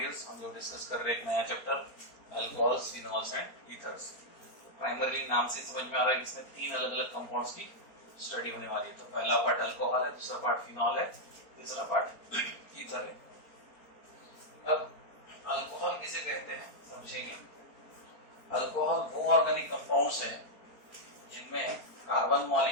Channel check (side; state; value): right; late; 4.3 ms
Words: हम लोग discuss कर रहे हैं एक नया chapter alcohols, phenols and ethers. Primarily नाम से समझ में आ रहा है कि इसमें तीन अलग अलग कंपाउंड्स की स्टडी होने वाली है। तो पहला पार्ट अल्कोहल है, दूसरा पार्ट फिनॉल है, तीसरा पार्ट ईथर है। अब अल्कोहल किसे कहते हैं समझेंगे। अल्कोहल वो ऑर्गेनिक कंपाउंड्स हैं जिनमें कार्बन